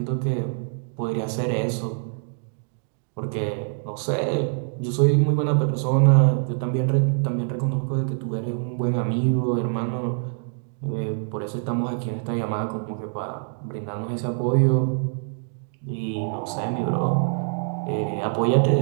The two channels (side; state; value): left; silent; digital silence